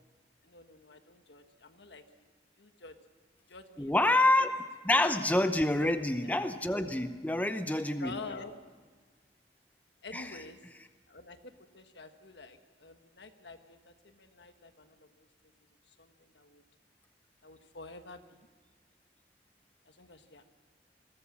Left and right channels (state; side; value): normal; both; correlation 0.72